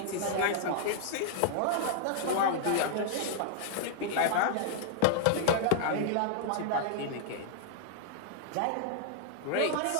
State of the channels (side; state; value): both; different; correlation -0.01